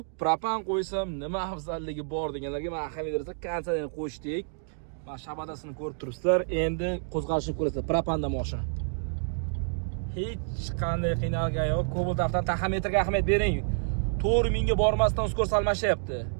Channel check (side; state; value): left; silent; digital silence